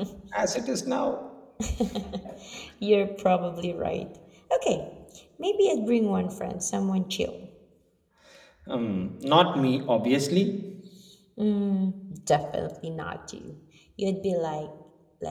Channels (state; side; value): identical; both; correlation 1.00